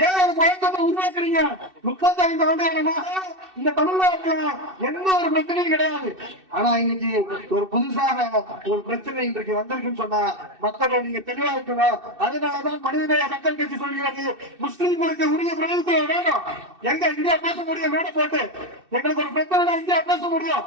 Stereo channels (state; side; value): late; left; 2.6 ms